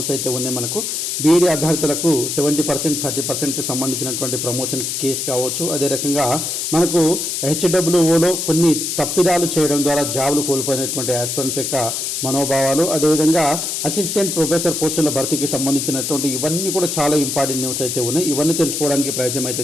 అయితే ఉన్నాయి. మనకు బీఈడీ అభ్యర్థులకు 70% 30%కి సంబంధించినటువంటి ప్రమోషన్స్ కేసు కావచ్చు. అదే రకంగా మనకు హెచ్డబ్ల్యూఓలో కొన్ని తప్పిదాలు చేయడం ద్వారా జాబులు కోల్పోయినటువంటి ఆస్పిరెంట్స్ యొక్క మనోభావాలు, అదేవిధంగా అసిస్టెంట్ ప్రొఫెసర్ పోస్టుల భర్తీకి సంబంధించినటువంటి ఇవన్నీ కూడా చాలా ఇంపార్టెంట్ న్యూస్ అయితే ఉన్నాయి. ఇవన్నీ తెలుసుకోవడానికి ప్రయత్నం అయితే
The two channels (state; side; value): noise; left; hiss, 2 dB below the sound